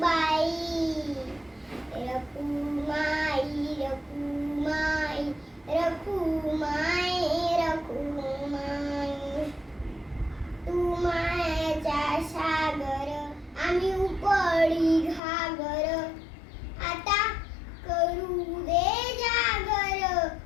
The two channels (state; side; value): drops out; right; at 15.2 s